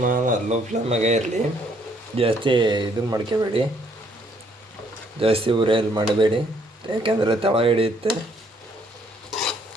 ಲೋ ಫ್ಲೇಮಾಗೆ ಇರಲಿ, ಜಾಸ್ತಿ ಇದನ್ನು ಮಾಡ್ಕೋಬೇಡಿ, ಜಾಸ್ತಿ ಉರಿಯಲ್ಲಿ ಮಾಡಬೇಡಿ, ಯಾಕೆಂದರೆ ತಳ ಹಿಡಿಯುತ್ತೆ.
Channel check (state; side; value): normal; both; correlation 0.67